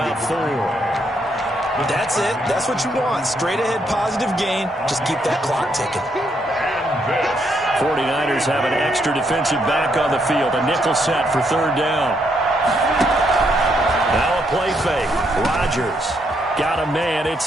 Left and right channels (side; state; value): both; normal; correlation 0.75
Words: 4. That's it. That's what you want. Straight ahead positive gain. Just keep that clock ticking. 49ers have an extra defensive back on the field. A nickel set for third down. Now a play fake. Rodgers got a man. It's